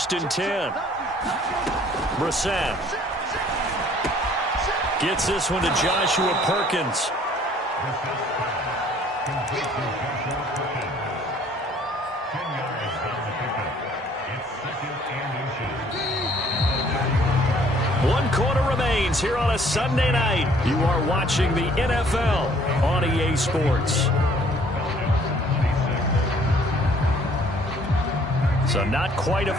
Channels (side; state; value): both; normal; correlation 0.58